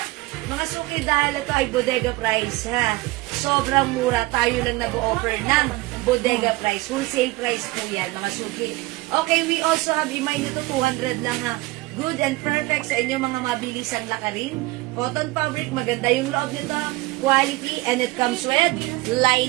Mga suki, dahil ito ay bodega price ha. Sobrang mura. Tayo lang nag-offer ng bodega price. Wholesale price po yan, mga suki. Okay, we also have, remind nyo to, 200 lang ha. Good and perfect sa inyong mga mabilisang lakarin. Cotton fabric, maganda yung loob nito. Quality, and it comes with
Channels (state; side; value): quieter; left; 20.9 dB